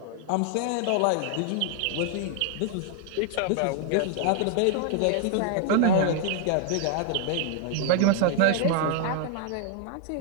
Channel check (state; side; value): different; both; correlation 0.00